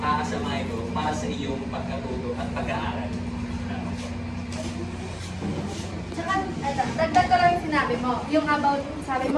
ito para sa iyong pagkatuto at pag-aaral. Tsaka, dagdag ko lang yung sinabi mo, yung about, sabi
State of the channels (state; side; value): identical; both; correlation 1.00